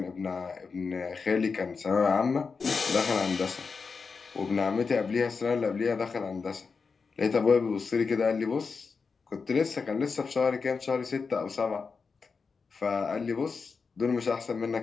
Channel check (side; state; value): right; quieter; 5.0 dB